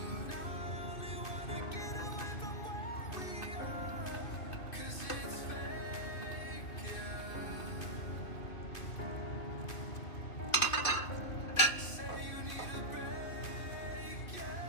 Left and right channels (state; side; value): late; right; 2.6 ms